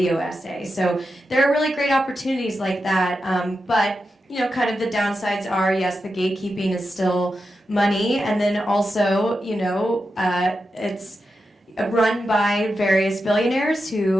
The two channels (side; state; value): both; normal; correlation 0.89